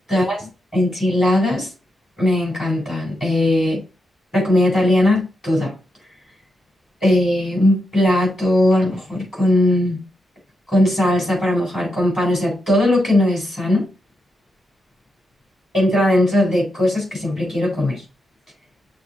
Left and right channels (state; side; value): normal; both; correlation 0.84